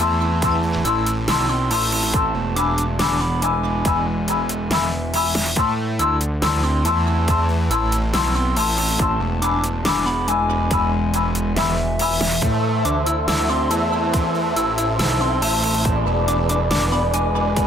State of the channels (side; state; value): both; normal; correlation 0.74